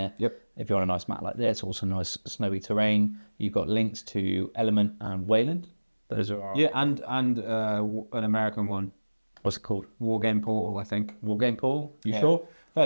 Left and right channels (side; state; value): both; inverted; correlation -1.00